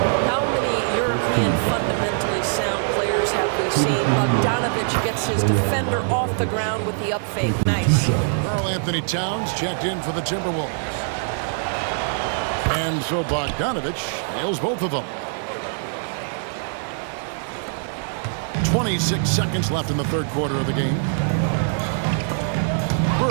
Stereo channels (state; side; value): silent; left; digital silence